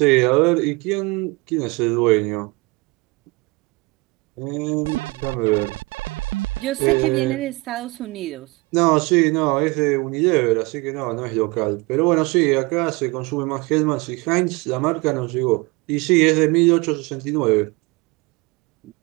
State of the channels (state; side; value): quieter; left; 25.5 dB